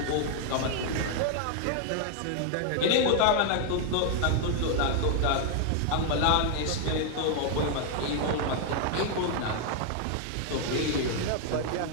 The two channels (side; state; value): both; different; correlation 0.00